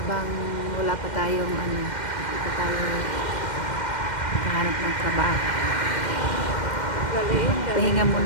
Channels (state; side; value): late; right; 2.1 ms